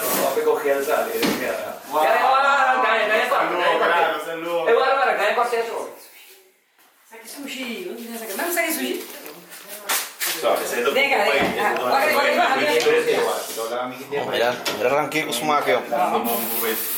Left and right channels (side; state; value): both; identical; correlation 1.00